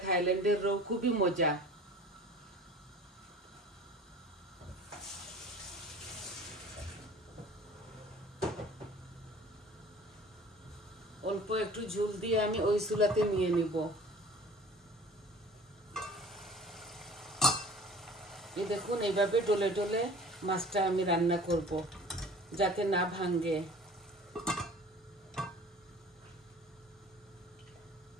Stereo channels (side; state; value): both; normal; correlation 0.45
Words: থাইল্যান্ডের রো, খুবই মজা। অল্প একটু ঝোল দিয়ে আমি ওই চুলাতে নিয়ে নিব। এই দেখুন, এইভাবে ডলে ডলে মাছটা আমি রান্না করব যাতে না ভাঙে।